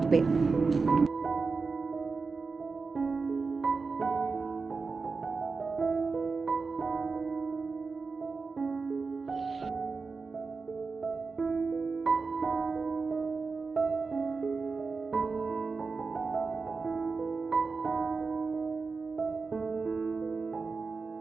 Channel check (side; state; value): left; quieter; 4.4 dB